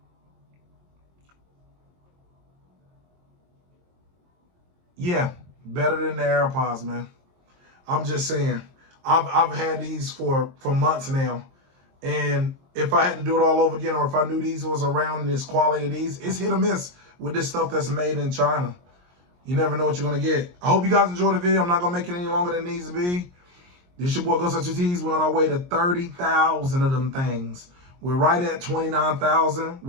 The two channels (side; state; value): left; late; 22 ms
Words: Yeah, better than the AirPods, man. I'm just saying. I've had these for months now, and if I had to do it all over again, or if I knew these was around this quality of these, it's hit or miss with this stuff that's made in China. You never know what you're gonna get. I hope you guys enjoyed the video. I'm not gonna make it any longer than it needs to be. This your boy Go Such Your Tees. We're on our way to 30,000 of them things. We're right at 29,000.